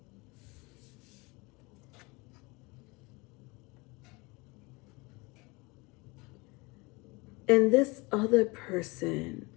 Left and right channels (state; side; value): quieter; right; 25.8 dB